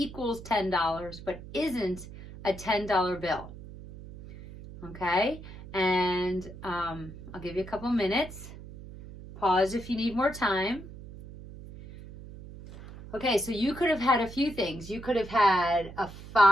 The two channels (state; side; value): noise; right; hum, 15 dB below the sound